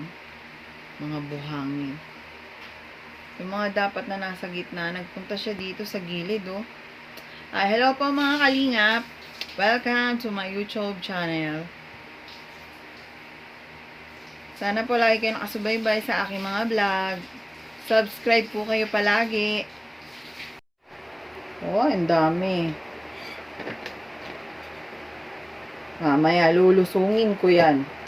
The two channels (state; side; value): identical; both; correlation 1.00